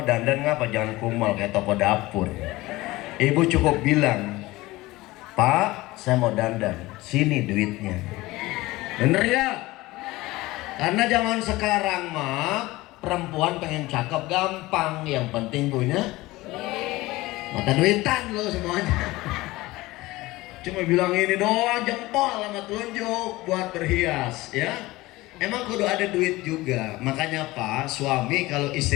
dandan ngapa jangan kumal kayak toko dapur. Ibu cukup bilang, Pak, saya mau dandan, sini duitnya. Bener ya? Karena zaman sekarang mah perempuan pengen cakep gampang, yang penting punya mata duitan lo semuanya. Cuma bilang ini doang, jempol sama telunjuk buat berhias ya. Emang kudu ada duit juga. Makanya Pak, suami kalau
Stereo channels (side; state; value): right; quieter; 19.5 dB